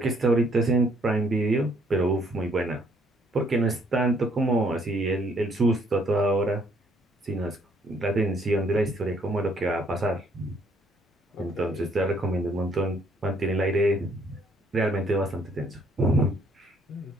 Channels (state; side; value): normal; both; correlation 0.66